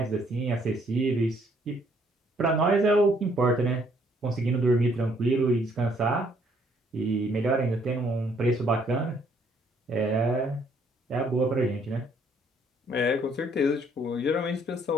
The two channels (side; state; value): both; normal; correlation 0.66